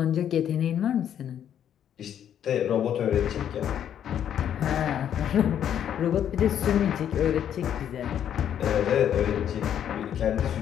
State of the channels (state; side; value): quieter; right; 9.7 dB